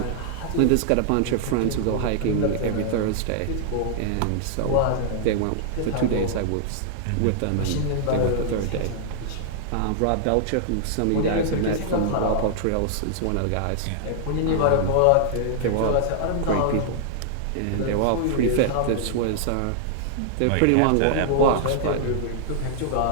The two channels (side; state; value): both; different; correlation -0.01